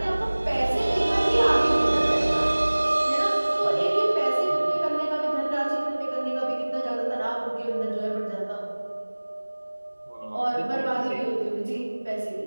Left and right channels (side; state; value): both; inverted; correlation -1.00